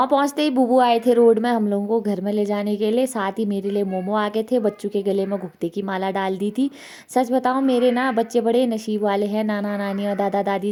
पहुँचते ही बुबू आए थे रोड में हम लोगों को घर में ले जाने के लिए। साथ ही मेरे लिए मोमो आ गए थे। बच्चों के गले में घुघते की माला डाल दी थी। सच बताऊँ मेरे ना बच्चे बड़े नसीब वाले हैं। नाना नानी और दादा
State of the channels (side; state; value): both; identical; correlation 1.00